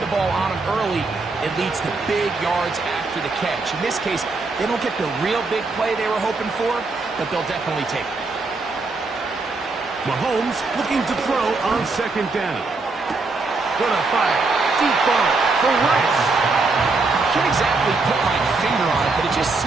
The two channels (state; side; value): quieter; left; 3.7 dB